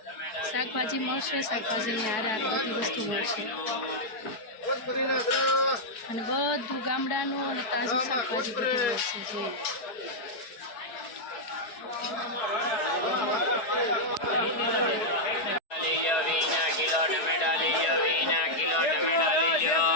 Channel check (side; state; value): right; late; 4.7 ms